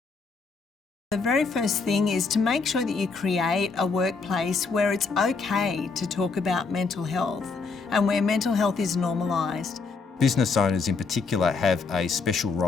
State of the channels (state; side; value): quieter; right; 4.6 dB